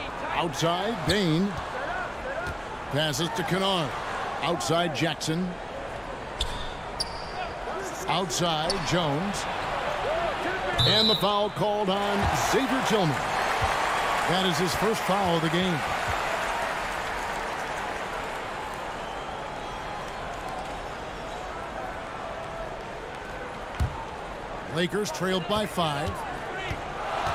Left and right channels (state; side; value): identical; both; correlation 1.00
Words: Outside, Bane. Passes to Kennard. Outside, Jackson. Outside, Jones. And the foul called on Xavier Tillman. That is his first foul of the game. Lakers trailed by 5.